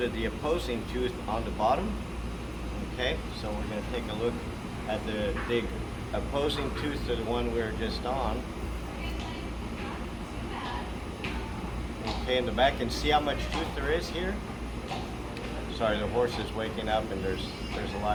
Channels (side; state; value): both; identical; correlation 1.00